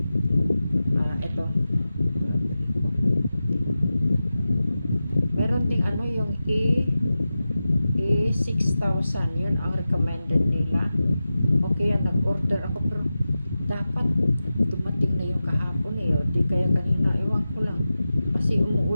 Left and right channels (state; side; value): inverted; both; correlation -0.94